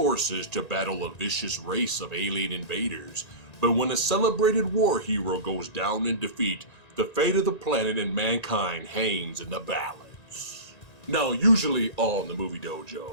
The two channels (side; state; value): right; late; 1.9 ms